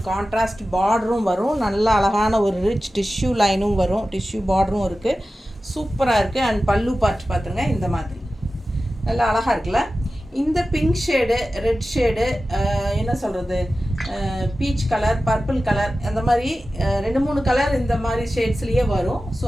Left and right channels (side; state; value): both; normal; correlation 0.94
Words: கான்ட்ராஸ்ட் பார்டரும் வரும். நல்ல அழகான ஒரு ரிச் டிஷ்யூ லைனும் வரும். டிஷ்யூ பார்டரும் இருக்குது. சூப்பராக இருக்குது. அண்ட் பல்லு பார்த்து பார்த்துங்க, இந்த மாதிரி நல்லா அழகாக இருக்குல்ல. இந்த பிங்க் ஷேடு, ரெட் ஷேடு, என்ன சொல்கிறது, பீச் கலர், பர்பிள் கலர், அந்த மாதிரி 2-3 கலர் இந்த மாதிரி ஷேட்ஸ்லேயே வரும். ஸோ